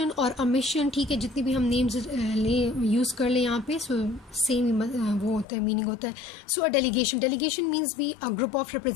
or a mission. ठीक है, जितनी भी हम names use कर ले यहाँ पे, so same वो होता है, meaning होता है. So a delegation means be a group of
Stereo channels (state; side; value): drops out; right; at 5.5 s